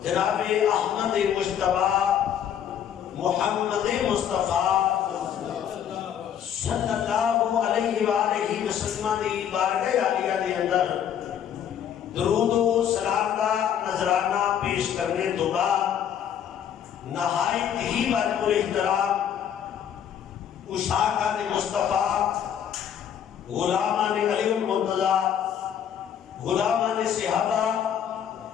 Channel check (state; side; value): quieter; right; 9.1 dB